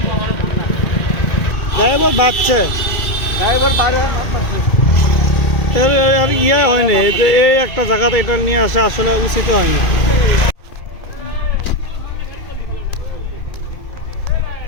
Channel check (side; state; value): right; late; 2.4 ms